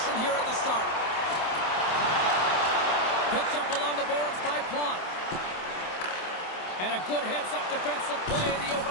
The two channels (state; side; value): late; right; 27 ms